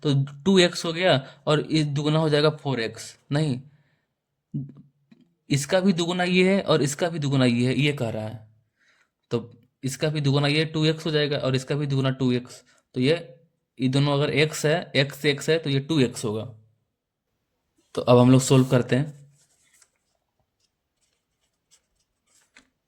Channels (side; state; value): both; identical; correlation 1.00